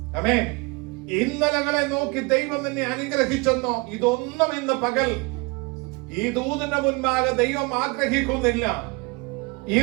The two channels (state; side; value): quieter; left; 27.6 dB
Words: ആമേൻ, ഇന്നലകളെ നോക്കി ദൈവം നിന്നെ അനുഗ്രഹിച്ചെന്നോ, ഇതൊന്നും ഇന്ന് പകൽ ഈ ദൂതിന്റെ മുൻപാകെ ദൈവം ആഗ്രഹിക്കുന്നില്ല.